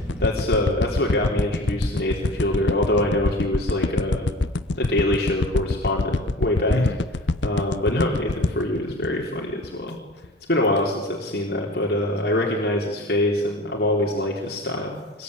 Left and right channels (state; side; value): normal; both; correlation 0.40